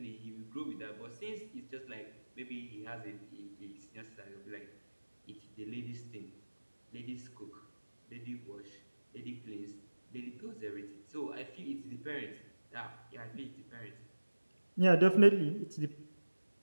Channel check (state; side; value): inverted; both; correlation -1.00